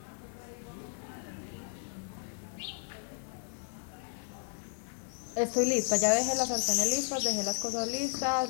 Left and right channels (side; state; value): right; silent; 55 dB below the other